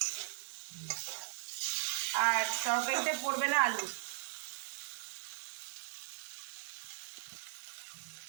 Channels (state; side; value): silent; left; digital silence